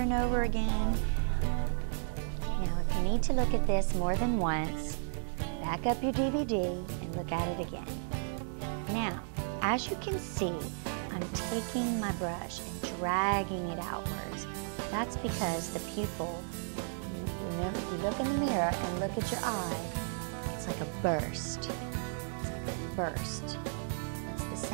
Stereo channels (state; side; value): silent; left; digital silence